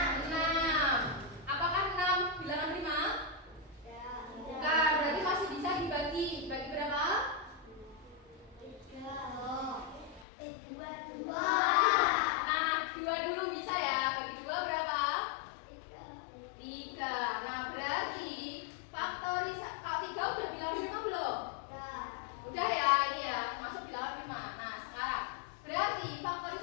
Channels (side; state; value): right; drops out; at 10.2 s